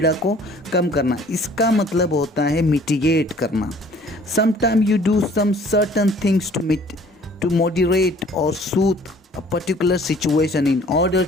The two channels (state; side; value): normal; both; correlation 0.54